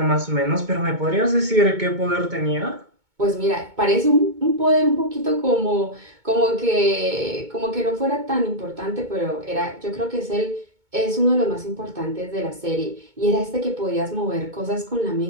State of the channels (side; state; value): left; late; 2.2 ms